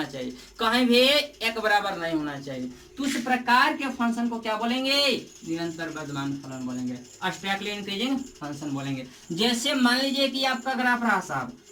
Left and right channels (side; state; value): both; identical; correlation 1.00